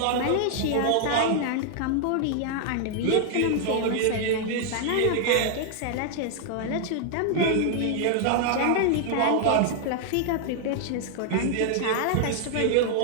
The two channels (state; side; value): different; both; correlation 0.00